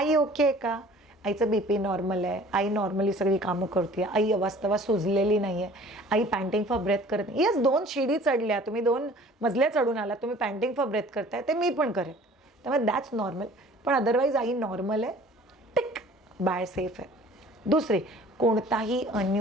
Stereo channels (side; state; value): both; normal; correlation 0.49